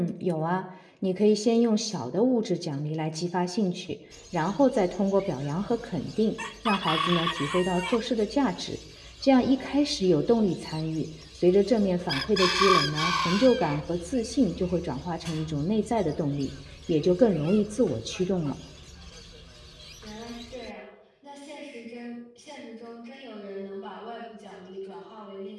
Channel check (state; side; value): identical; both; correlation 1.00